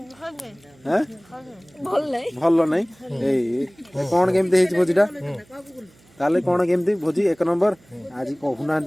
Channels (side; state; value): right; noise; hum, 30 dB below the sound